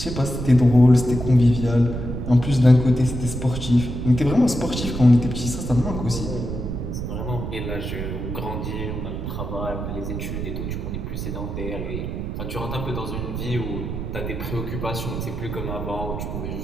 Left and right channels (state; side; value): noise; right; rumble, 5 dB below the sound